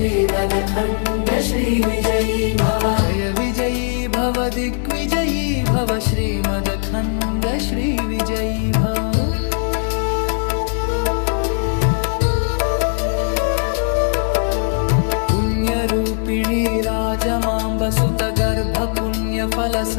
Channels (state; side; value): silent; right; 61 dB below the other